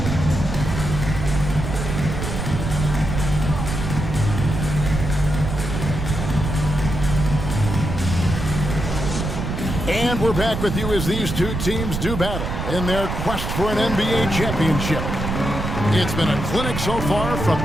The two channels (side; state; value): right; noise; rumble, 4 dB below the sound